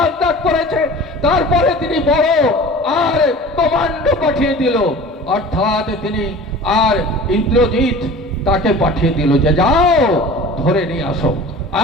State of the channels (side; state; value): both; normal; correlation 0.40